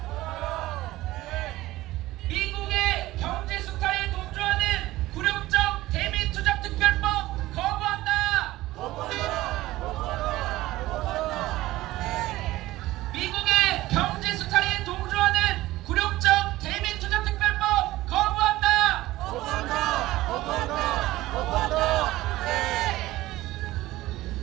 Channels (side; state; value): left; quieter; 17.2 dB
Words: 미국의 경제 수탈에 동조하는 굴욕적 대미 투자 특별법 거부한다! 미국의 경제 수탈에 동조하는 굴욕적 대미 투자 특별법 거부한다!